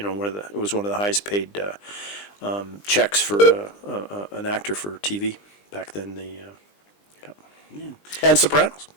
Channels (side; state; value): right; late; 20 ms